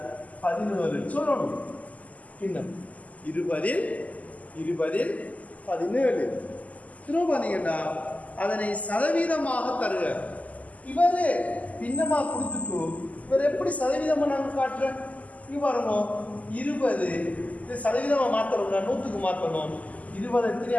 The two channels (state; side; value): late; right; 0.073 ms